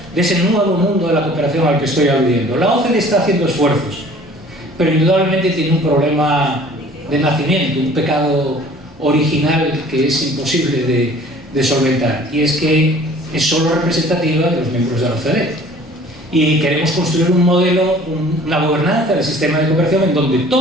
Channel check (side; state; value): both; normal; correlation 0.50